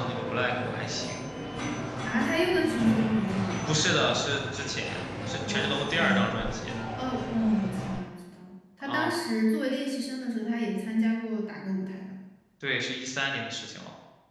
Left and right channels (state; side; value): identical; both; correlation 1.00